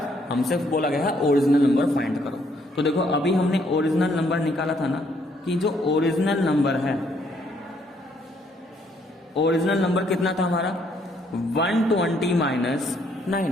हमसे बोला गया है ओरिजिनल नंबर फाइंड करो। तो देखो अभी हमने ओरिजिनल नंबर निकाला था ना, कि जो ओरिजिनल नंबर है, ओरिजिनल नंबर कितना था हमारा 120 माइनस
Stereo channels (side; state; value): both; normal; correlation 0.69